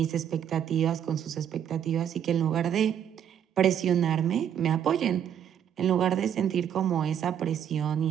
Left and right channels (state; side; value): quieter; left; 9.3 dB